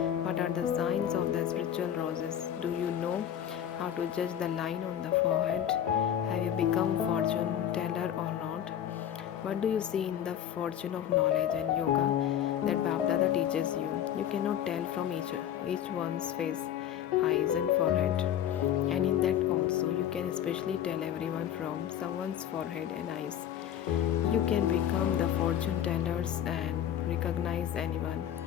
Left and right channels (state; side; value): quieter; right; 10.2 dB